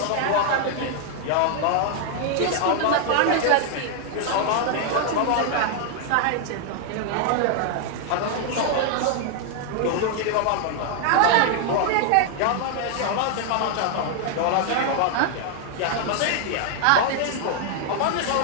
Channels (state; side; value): different; both; correlation 0.00